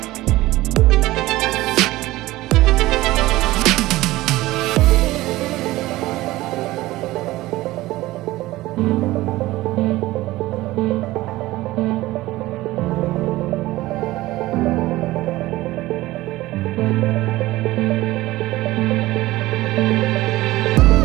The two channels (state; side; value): quieter; left; 17.9 dB